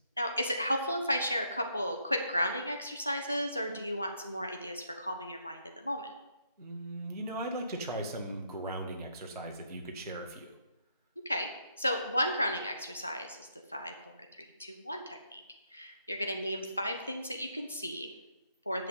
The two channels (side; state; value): both; inverted; correlation -0.74